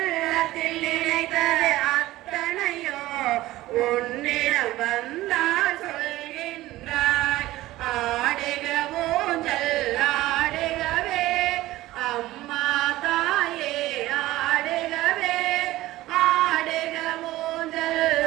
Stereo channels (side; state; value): left; quieter; 16.8 dB